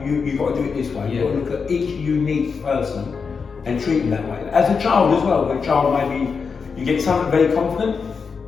you've got to do it this way. You've got to look at each unique person and treat them that way. As a child as well, a child maybe you get someone very confident,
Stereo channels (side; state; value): right; quieter; 5.5 dB